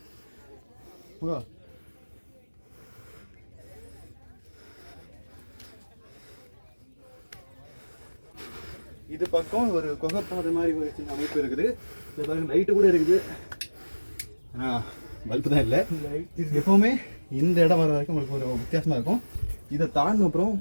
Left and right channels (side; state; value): both; inverted; correlation -1.00